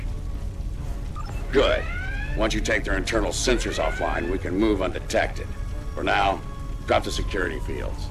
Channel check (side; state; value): both; identical; correlation 1.00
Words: Good. Once you take their internal sensors offline, we can move undetected. For now, drop the security fields.